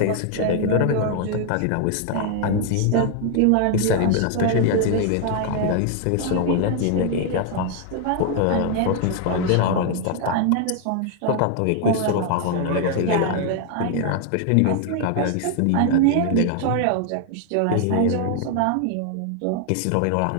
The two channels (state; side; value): different; both; correlation 0.00